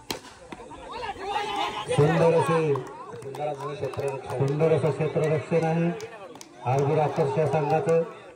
सुंदर असं क्षेत्ररक्षण आहे आरबी राक्षस संघाचं.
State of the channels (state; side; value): identical; both; correlation 1.00